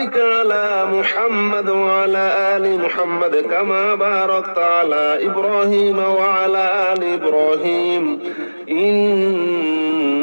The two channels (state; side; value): inverted; both; correlation -1.00